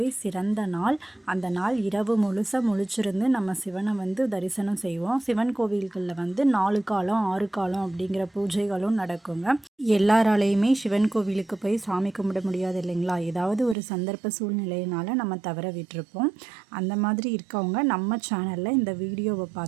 சிறந்த நாள். அந்த நாள் இரவு முழுசாக முழிச்சிருந்து நம்ம சிவனை தரிசனம் செய்வோம். சிவன் கோவில்களில் 4 காலம் 6 காலம் அப்படிங்கிற பூஜைகளும் நடக்குங்க. எல்லாராலையுமே சிவன் கோவிலுக்கு போய் சாமி கும்பிட முடியாது இல்லைங்களா? ஏதாவது ஒரு சந்தர்ப்ப சூழ்நிலையினால நம்ம தவற விட்டுருப்போம். அந்த மாதிரி இருக்கவங்க நம்ம சேனலில் இந்த வீடியோவை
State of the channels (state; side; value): drops out; left; at 13.8 s